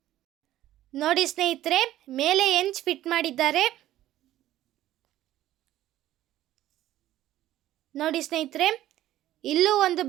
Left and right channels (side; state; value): left; quieter; 13.7 dB